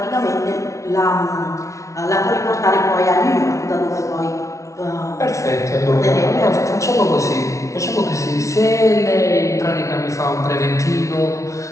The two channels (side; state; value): right; late; 0.15 ms